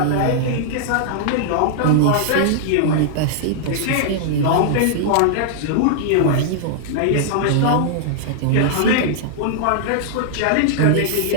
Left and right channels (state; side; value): different; both; correlation -0.01